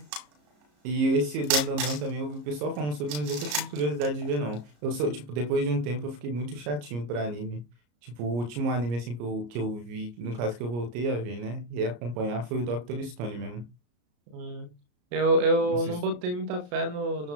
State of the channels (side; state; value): left; late; 34 ms